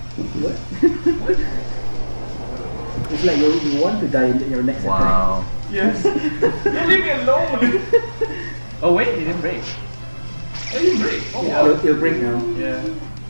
It's like you want to die in your next attack. Wow. Yes. Leave me alone. Oh wait, it didn't break. I didn't break. Oh Yeah, wow. it'll break now. Yeah.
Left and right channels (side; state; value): both; inverted; correlation -1.00